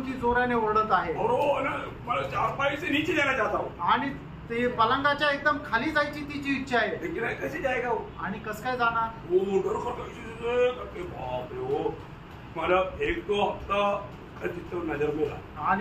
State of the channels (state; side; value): identical; both; correlation 1.00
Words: ती जोराने ओरडत आहे। और वो ना मतलब चारपाई से नीचे जाना चाहता हूँ आणि ते पलंगाच्या एकदम खाली जायची तिची इच्छा आहे। लेकिन कैसे जाएगा वो, आणि कस काय जाणार, वो डर करके बाप रे वो मतलब एक दो हफ्ता चित्र नजर में रहा